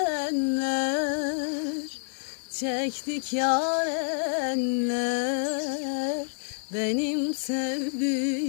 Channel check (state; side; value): silent; right; 59 dB below the other